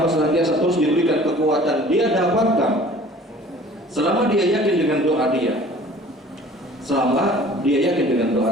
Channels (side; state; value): both; normal; correlation 0.48